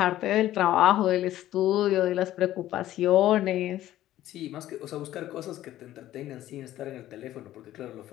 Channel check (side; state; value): right; quieter; 13.8 dB